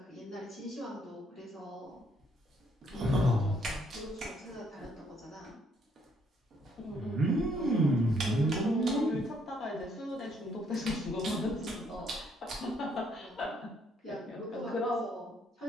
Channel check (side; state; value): both; normal; correlation 0.69